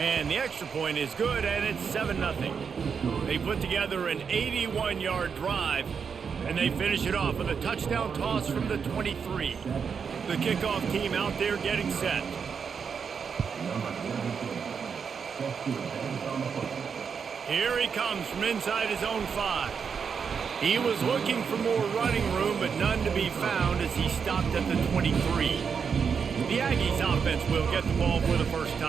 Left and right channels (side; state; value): left; quieter; 6.3 dB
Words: the extra point is good, and it's 7-0. They put together an 81-yard drive, and they finish it off with a touchdown toss from the 23. The kickoff team out there getting set. Here he comes from inside his own 5. He was looking for more running room, but none to be found as he stopped at the 23. The Aggies offense will get the ball for the first